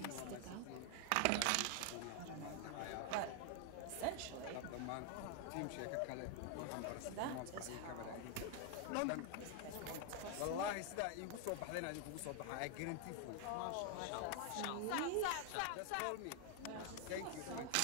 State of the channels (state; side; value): different; both; correlation 0.00